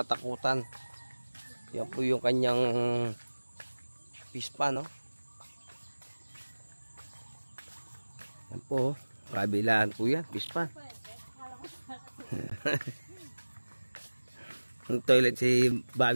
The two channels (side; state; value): both; inverted; correlation -1.00